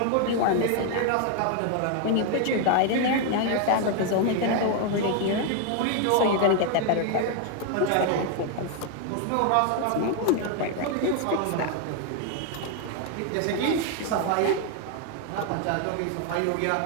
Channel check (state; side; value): different; both; correlation 0.01